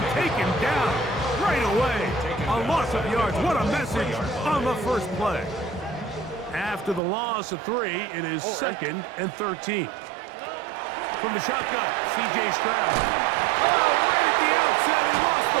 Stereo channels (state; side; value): drops out; left; at 7.0 s